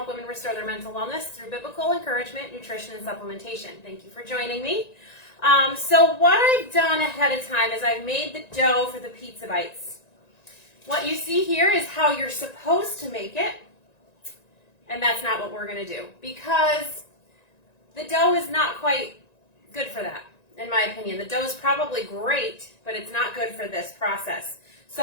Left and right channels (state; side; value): late; right; 1.9 ms